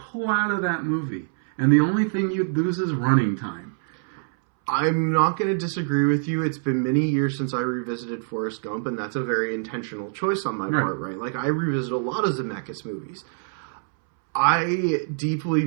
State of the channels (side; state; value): left; silent; 62 dB below the other